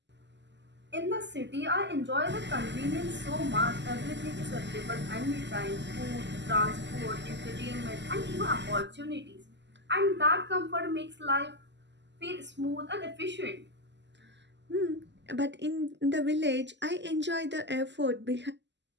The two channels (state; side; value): late; left; 0.51 ms